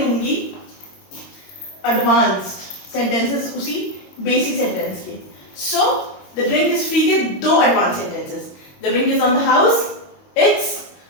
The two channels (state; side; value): late; right; 22 ms